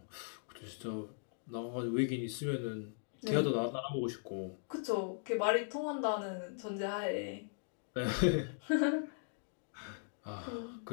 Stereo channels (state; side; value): silent; right; digital silence